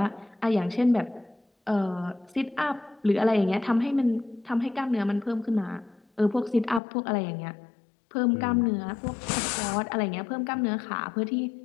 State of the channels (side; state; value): right; drops out; at 6.8 s